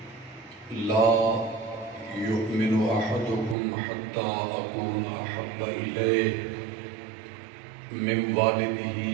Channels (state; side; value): drops out; left; at 3.6 s